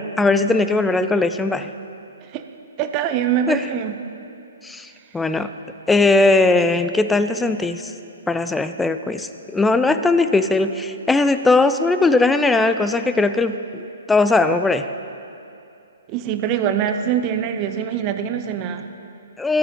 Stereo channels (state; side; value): normal; both; correlation 0.63